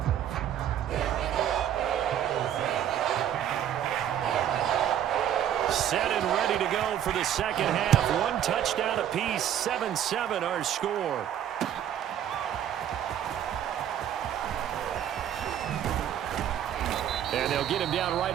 Set and ready to go for the second half. One touchdown apiece, 7-7 our score. And they'll get him down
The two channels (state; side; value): quieter; left; 10.3 dB